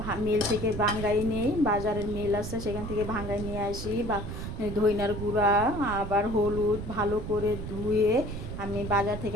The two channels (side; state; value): right; noise; rumble, 7 dB below the sound